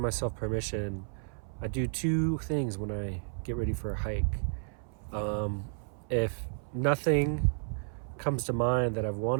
permission. I do two things when I get ready for a hike. If nothing comes to mind that I've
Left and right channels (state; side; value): silent; left; 56 dB below the other